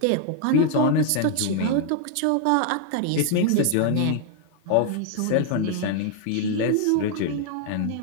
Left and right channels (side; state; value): both; different; correlation 0.00